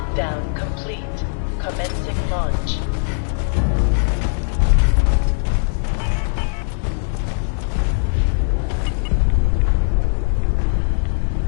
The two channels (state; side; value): silent; right; digital silence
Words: complete. Commencing launch.